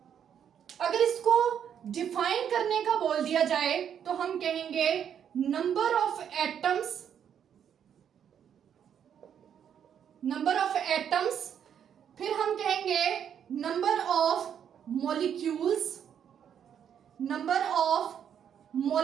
अगर इसको डिफाइन करने का बोल दिया जाए तो हम कहेंगे नंबर ऑफ एटम्स, फिर हम कहेंगे नंबर ऑफ मॉलिक्यूल्स,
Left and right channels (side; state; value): left; quieter; 8.6 dB